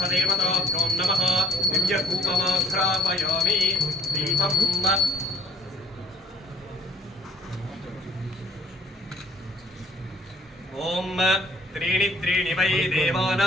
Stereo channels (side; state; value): both; normal; correlation 0.60